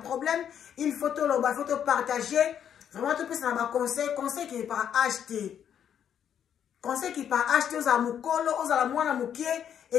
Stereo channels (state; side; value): quieter; right; 9.0 dB